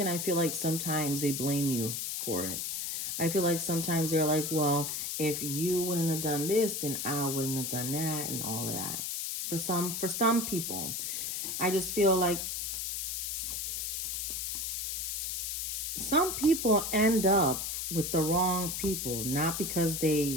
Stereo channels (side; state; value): left; noise; hiss, 3 dB below the sound